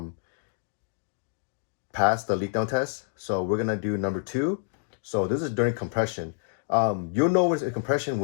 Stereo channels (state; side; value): silent; right; digital silence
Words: passed the leak down test. So we're gonna do number 2. So this is during compression. You'll know when it's in compression